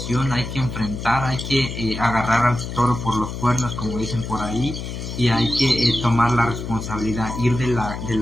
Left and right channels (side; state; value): left; noise; hum, 7 dB below the sound